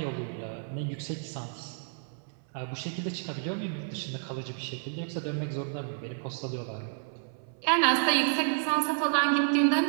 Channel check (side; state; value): left; silent; 56 dB below the other